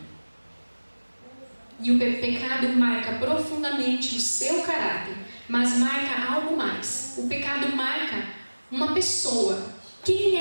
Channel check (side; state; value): both; inverted; correlation -1.00